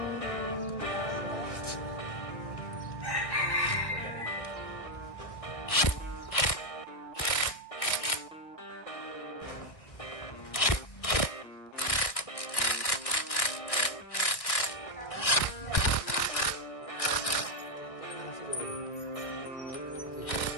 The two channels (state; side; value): late; right; 1.6 ms